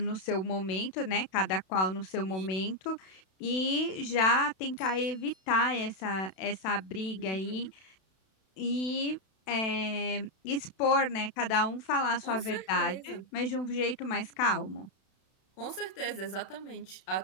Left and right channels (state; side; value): late; right; 32 ms